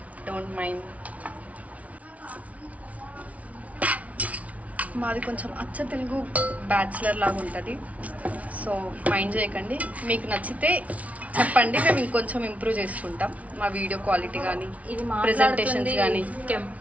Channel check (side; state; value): left; late; 0.067 ms